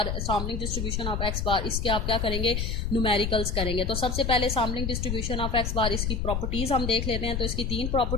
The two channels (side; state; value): left; noise; rumble, 1 dB below the sound